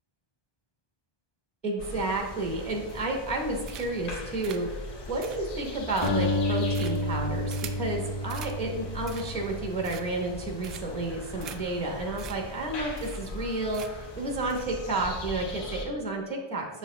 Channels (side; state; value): right; late; 1.2 ms